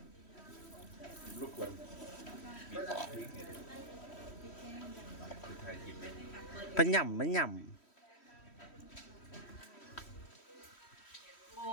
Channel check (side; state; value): right; late; 3.1 ms